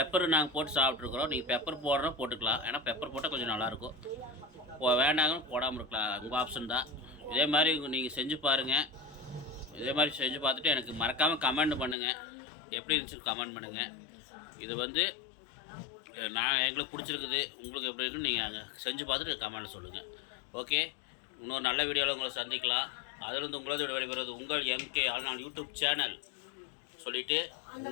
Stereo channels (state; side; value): drops out; right; at 12.0 s